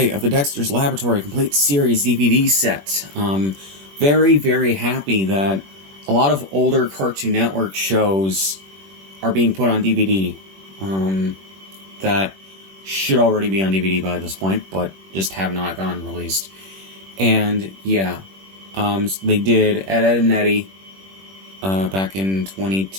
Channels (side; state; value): left; late; 21 ms